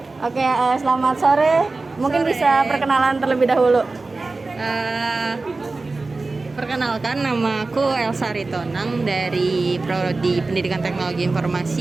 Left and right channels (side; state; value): left; quieter; 3.6 dB